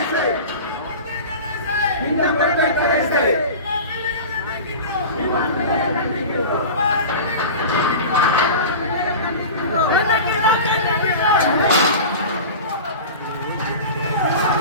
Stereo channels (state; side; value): inverted; both; correlation -0.33